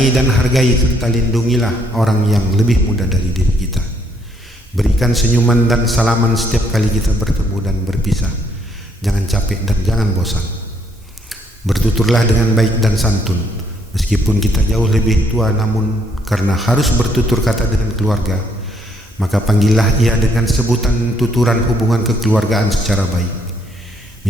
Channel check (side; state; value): both; normal; correlation 0.70